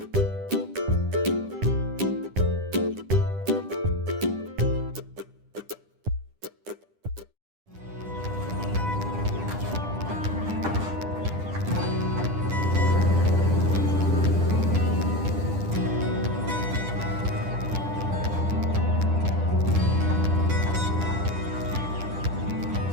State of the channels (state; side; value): late; left; 10 ms